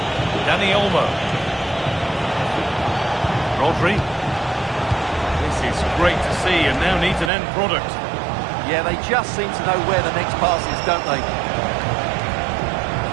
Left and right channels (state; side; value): drops out; left; at 7.3 s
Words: Dani Olmo. Rodri. This is great to see and now needs an end product. Yeah, they just seem to know where the next pass is, don't they?